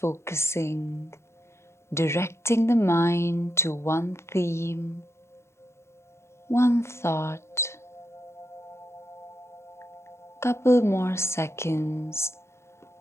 directing the mind to one theme, one thought. Couple more seconds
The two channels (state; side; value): late; right; 0.13 ms